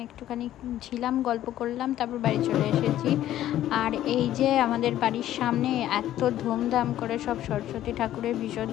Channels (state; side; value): quieter; right; 12.8 dB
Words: একটুখানি ছিলাম, গল্প করলাম, তারপর বাড়ি চলে এসেছি। আর এই যে আমাদের বাড়ির সামনে এত ধুমধাম করে সব সরস্বতী ঠাকুরের